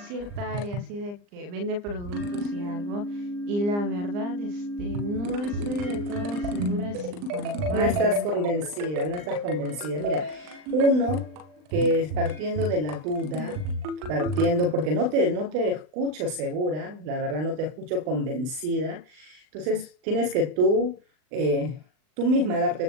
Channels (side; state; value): left; late; 39 ms